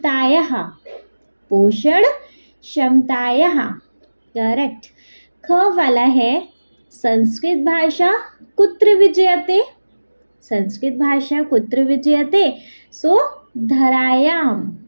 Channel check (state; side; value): inverted; both; correlation -1.00